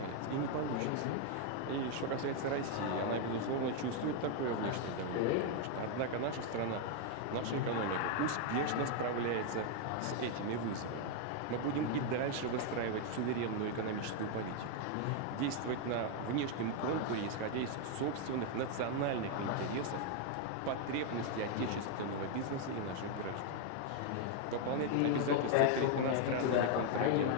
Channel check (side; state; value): both; different; correlation 0.00